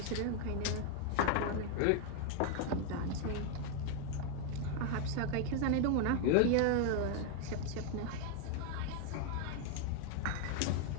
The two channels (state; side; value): different; both; correlation 0.01